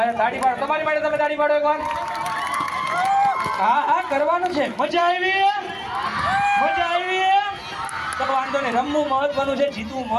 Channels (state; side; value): identical; both; correlation 1.00